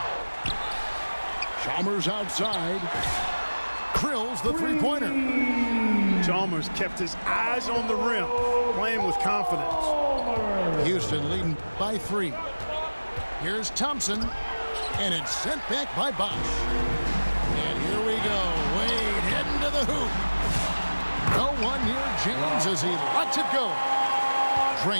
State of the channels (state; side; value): inverted; both; correlation -1.00